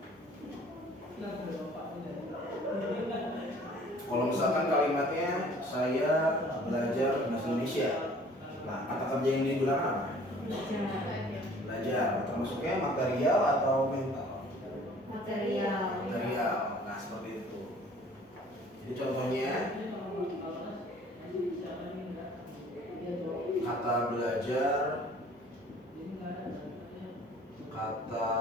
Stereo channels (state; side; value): normal; both; correlation 0.52